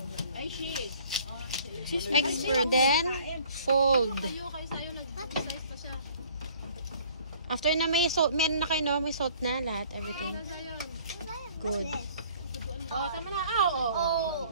Ay, she is. Expert. Then, fold. Kayo sa'yo, nag-size pa siya. After na may salt, meron na kayo no? May salt na lahat, everything. Good. Oh, tama na. Oh.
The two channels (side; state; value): both; inverted; correlation -0.54